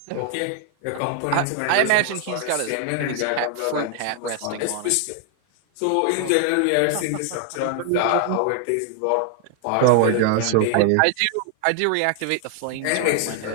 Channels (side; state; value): both; different; correlation 0.00